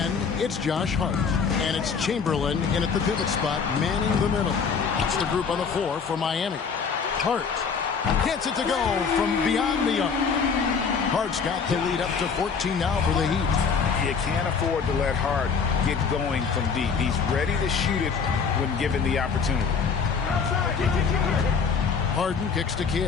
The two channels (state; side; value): quieter; right; 5.8 dB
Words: it's Josh Hart. And it's Chamberlain in at the pivot spot, manning the middle. That's the group on the floor for Miami. Hart gets it to go from beyond the arc. Hart's got the lead up to 14 now for the Heat. You can't afford to let Hart get going from deep. He's ready to shoot it when given the opportunity. Harden kicks to